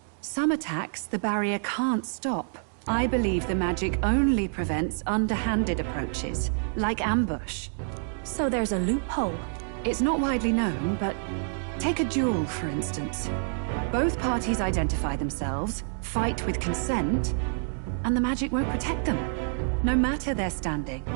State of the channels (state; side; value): silent; left; digital silence